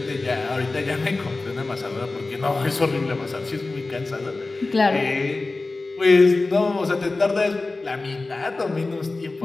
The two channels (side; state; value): right; quieter; 3.4 dB